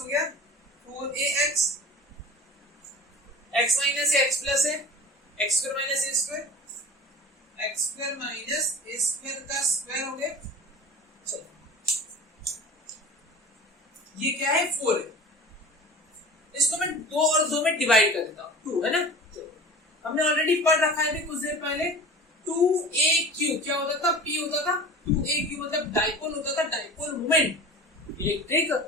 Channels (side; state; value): both; normal; correlation 0.38